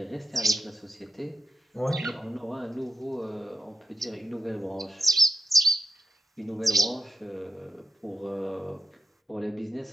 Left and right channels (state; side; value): normal; both; correlation 0.88